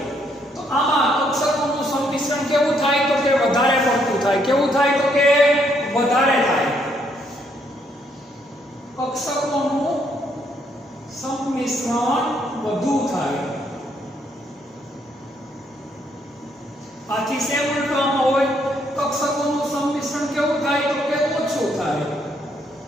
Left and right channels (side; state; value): both; normal; correlation 0.72